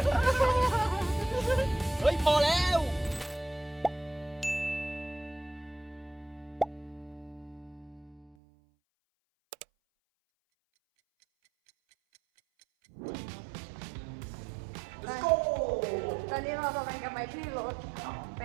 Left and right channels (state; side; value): drops out; left; at 8.3 s